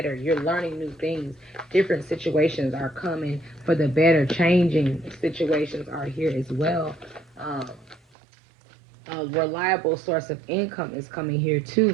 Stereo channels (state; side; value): drops out; left; at 8.0 s